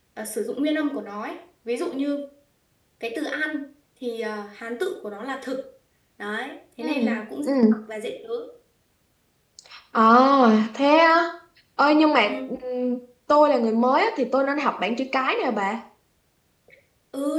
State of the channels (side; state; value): both; identical; correlation 1.00